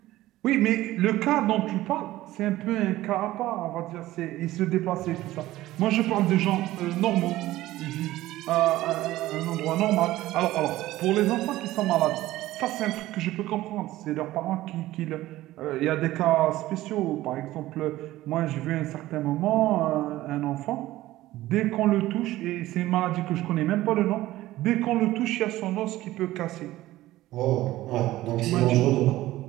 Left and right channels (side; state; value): left; quieter; 16.2 dB